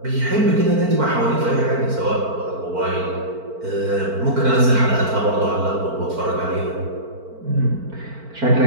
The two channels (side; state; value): left; late; 4.5 ms